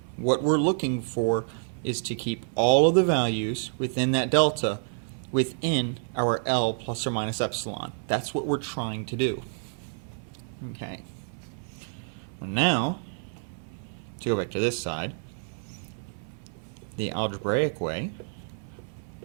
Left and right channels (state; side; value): silent; left; 55 dB below the other